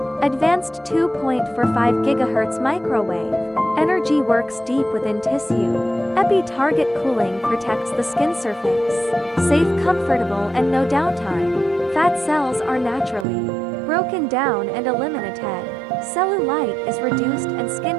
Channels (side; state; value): left; drops out; at 13.2 s